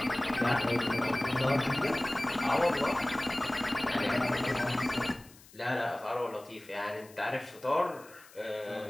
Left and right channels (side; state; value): left; noise; hiss, 23 dB below the sound